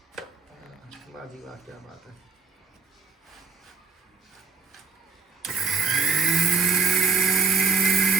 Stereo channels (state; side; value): quieter; left; 4.8 dB